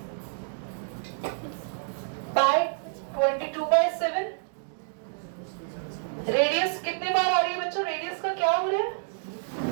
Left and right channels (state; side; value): silent; left; digital silence